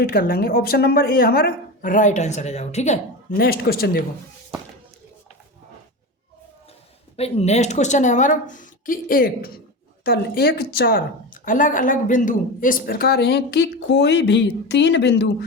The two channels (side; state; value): both; normal; correlation 0.24